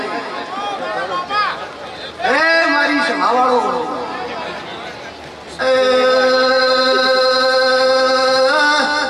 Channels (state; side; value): identical; both; correlation 1.00